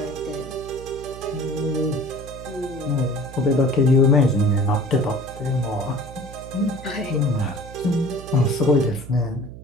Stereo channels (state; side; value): noise; right; hum, 15 dB below the sound